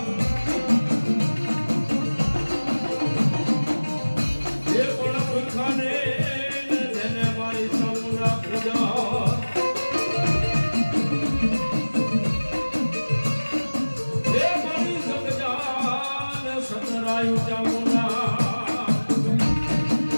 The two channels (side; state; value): both; inverted; correlation -1.00